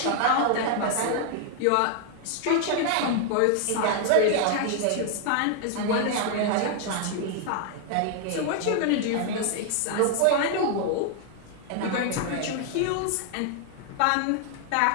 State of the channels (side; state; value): both; different; correlation 0.00